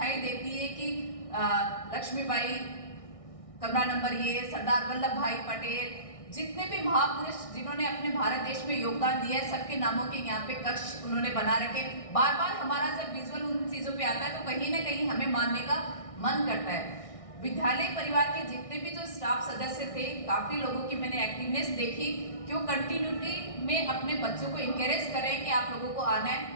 देती है कि लक्ष्मीबाई कमरा नंबर ये, सरदार वल्लभ भाई पटेल, जितने भी महापुरुष जिन्होंने अपने भारत देश में योगदान दिया है सबके नामों के यहाँ पे कक्ष उन्होंने बना रखे। बार बार हमारा जब विजुअल उन चीजों पे आता है तो कहीं ना कहीं हमें मानने का मन करता है। विद्यालय परिवार के जितने भी जो स्टाफ सदस्य थे, काफी लोगों की मैंने एक्टिवनेस देखी कि वो कंटिन्यूटी में अपने बच्चों को इंकरेज करें कि आप लोगों को आना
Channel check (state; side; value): late; right; 1.6 ms